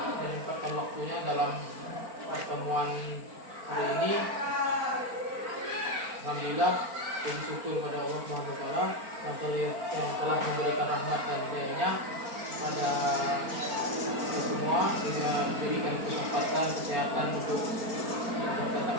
menyempatkan waktunya dalam pertemuan hari ini. Alhamdulillah, puji syukur pada Allah Subhanahu wa taala yang telah memberikan rahmat dan hidayahnya pada semua dengan diberikan kesempatan kesehatan untuk datang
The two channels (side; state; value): left; late; 4.4 ms